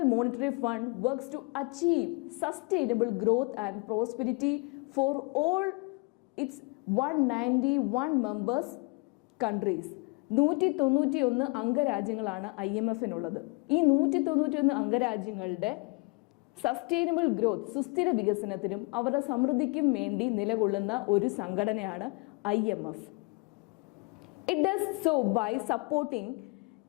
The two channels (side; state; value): right; quieter; 29.7 dB